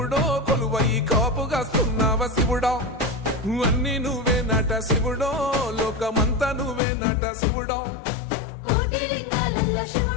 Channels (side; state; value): right; drops out; at 6.8 s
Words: కొలువై కాపుగాస్తున్నావ శివుడో అన్ని నువ్వే నట శివుడో లోకమంతా నువ్వే నట శివుడో